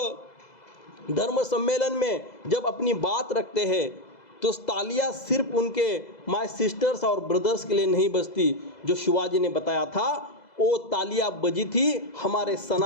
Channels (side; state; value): right; late; 2.0 ms